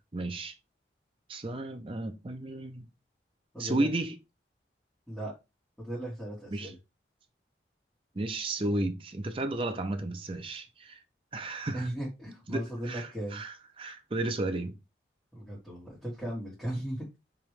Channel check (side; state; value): both; normal; correlation 0.70